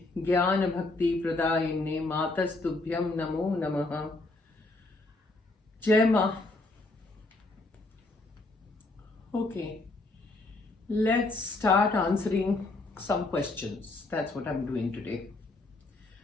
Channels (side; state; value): right; quieter; 3.1 dB